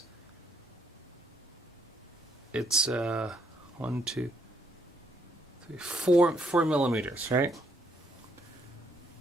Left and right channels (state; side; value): normal; both; correlation 0.71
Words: it's 4 millimeters, right?